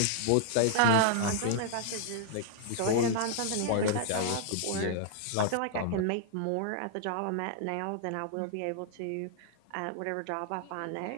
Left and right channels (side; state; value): both; different; correlation -0.01